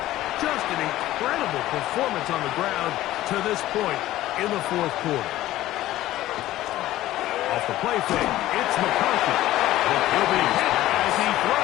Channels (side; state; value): right; quieter; 15.1 dB